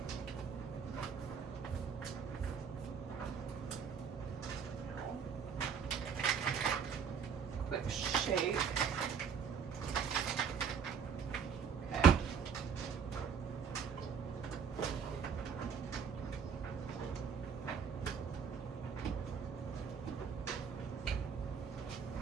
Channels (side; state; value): left; quieter; 6.8 dB